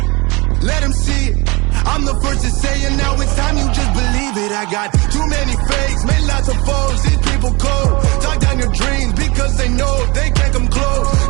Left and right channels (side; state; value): left; quieter; 25.8 dB